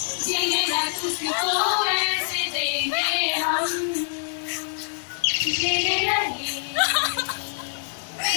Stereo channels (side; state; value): right; silent; digital silence